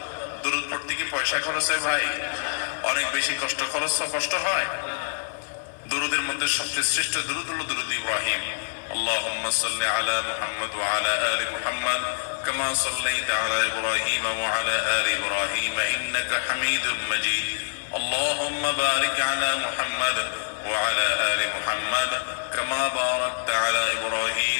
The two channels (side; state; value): right; silent; 61 dB below the other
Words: দুরুদ পড়তে কি পয়সা খরচ হয় ভাই? অনেক বেশি কষ্ট হয়। দুরুদের মধ্যে সবচেয়ে শ্রেষ্ঠ দুরুদ হলো দুরুদ ইব্রাহিম। আল্লাহুম্মা সাল্লি আলা মুহাম্মাদ ওয়া আলা আলি মুহাম্মাদ কামা সাল্লাইতা আলা ইব্রাহিম ওয়া আলা আলি ইব্রাহিম ইন্নাকা হামিদুম মাজিদ। আল্লাহুম্মা বারিক আলা মুহাম্মাদ ওয়া আলা আলি মুহাম্মাদ কামা বারাকতা আলা ইব্রাহিম